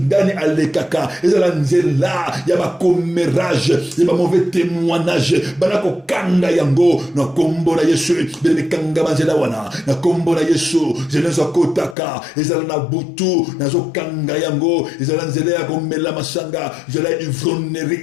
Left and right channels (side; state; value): right; drops out; at 12.0 s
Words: alekaka, ezala nzela, yaba commérage, yaba mauvais témoignage, banako kanga yango, na kombo na Yesu, benane kanga banzela wana, na kombo na Yesu, je ne suis kotaka, ezala na butu, nazo kanga yango, ezala nzela ya komela masanga, ezala